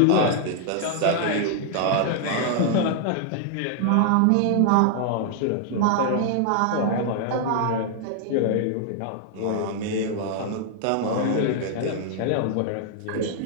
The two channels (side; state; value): both; different; correlation 0.00